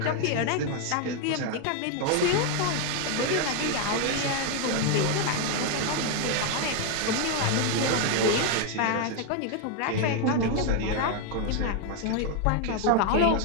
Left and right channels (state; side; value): different; both; correlation 0.01